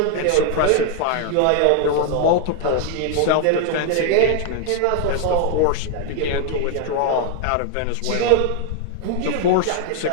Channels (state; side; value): different; both; correlation 0.00